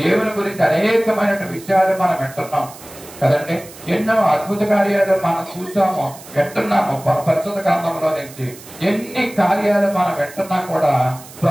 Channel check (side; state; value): right; noise; hiss, 18 dB below the sound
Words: దేవుని గురించి అనేకమైన విషయాలు మనం వింటున్నాం కదండి. ఎన్నో అద్భుత కార్యాలు మనం చూసాము, వింటున్నాము. పరిశుద్ధ గ్రంథంలో నుంచి ఎన్ని కార్యాలు మనం వింటున్నా కూడా